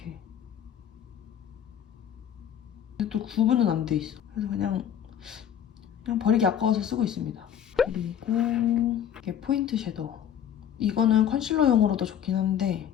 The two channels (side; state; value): right; quieter; 9.6 dB